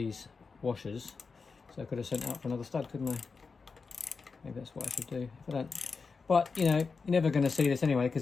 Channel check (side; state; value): right; quieter; 4.8 dB